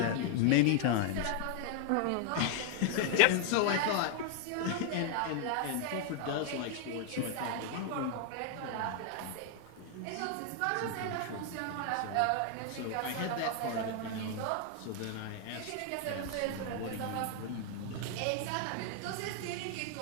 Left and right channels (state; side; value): different; both; correlation 0.00